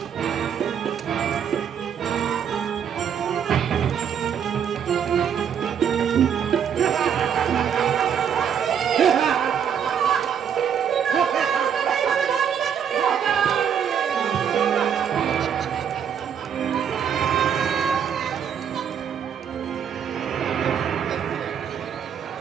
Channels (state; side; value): quieter; left; 8.1 dB